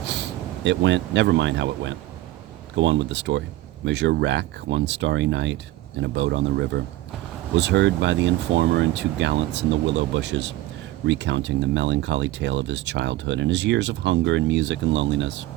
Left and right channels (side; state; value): left; quieter; 16.3 dB